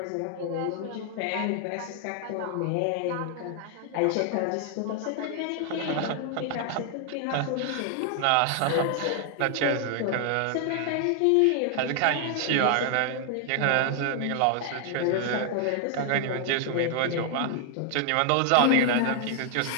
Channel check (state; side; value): different; both; correlation 0.00